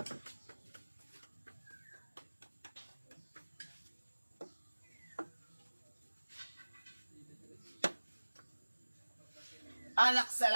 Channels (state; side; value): inverted; both; correlation -1.00